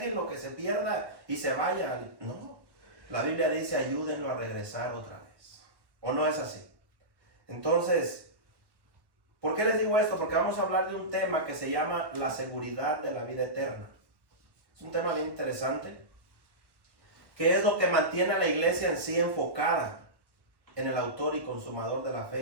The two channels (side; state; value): left; late; 1.1 ms